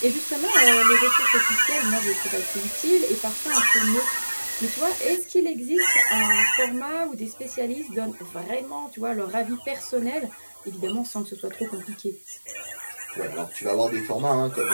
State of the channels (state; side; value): inverted; both; correlation -1.00